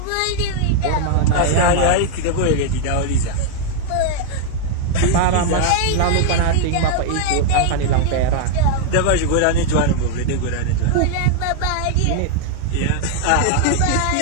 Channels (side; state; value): both; different; correlation 0.00